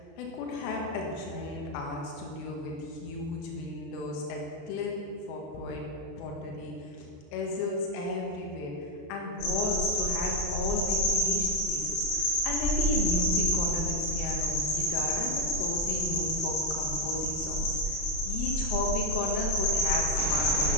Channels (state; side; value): late; right; 28 ms